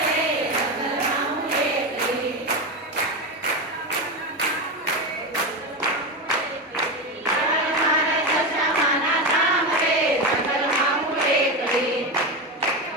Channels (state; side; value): normal; both; correlation 0.16